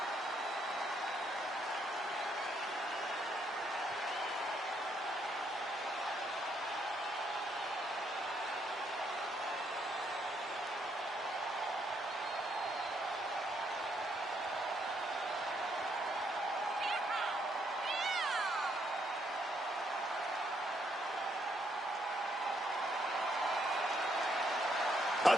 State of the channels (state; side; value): normal; both; correlation 0.73